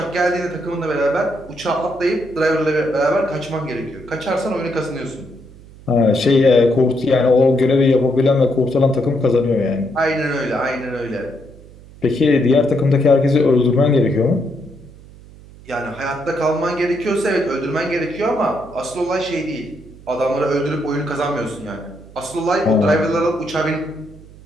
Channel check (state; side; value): noise; right; hum, 21 dB below the sound